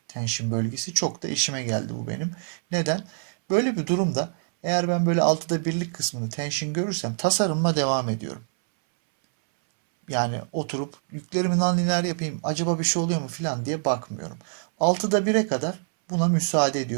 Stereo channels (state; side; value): silent; left; 62 dB below the other